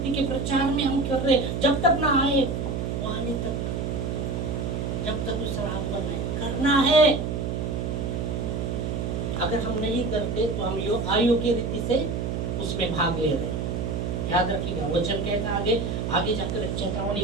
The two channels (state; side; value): noise; right; hum, 2 dB below the sound